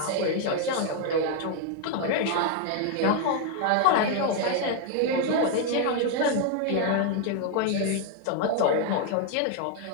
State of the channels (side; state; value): both; different; correlation 0.01